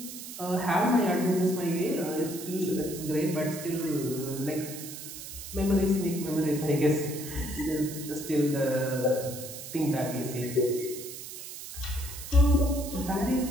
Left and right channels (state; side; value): noise; right; hiss, 11 dB below the sound